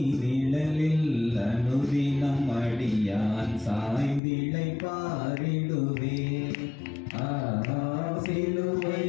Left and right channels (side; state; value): right; drops out; at 4.2 s